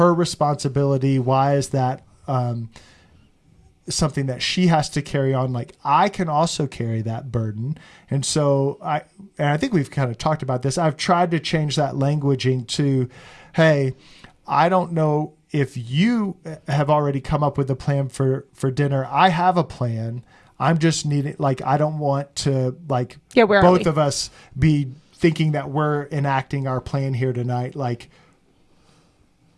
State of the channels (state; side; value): identical; both; correlation 1.00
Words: responsibility? Why is that something that she has to carry on? Like, I can also carry that burden. And so I think we've kind of talked about this. I've tried to change that languaging to, hey, I don't know if you have already come up with a plan for dinner. I have a plan. I'm just needing, like, I don't want to, like, both of us be thinking that we're enacting our plan here tonight, like